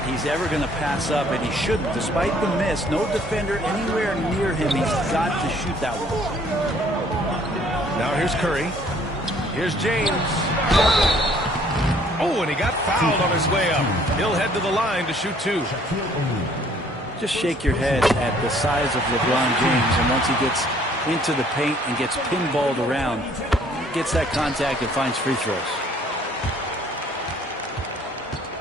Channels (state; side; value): normal; both; correlation 0.59